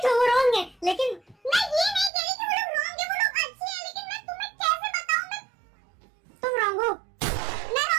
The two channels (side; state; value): left; drops out; at 2.1 s